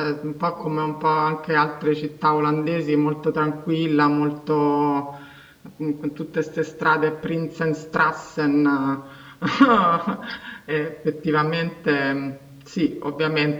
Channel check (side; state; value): both; identical; correlation 1.00